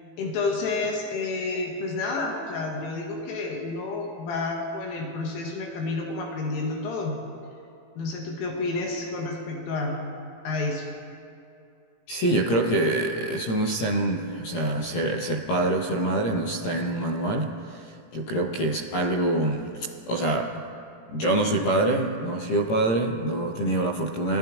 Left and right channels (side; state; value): right; late; 18 ms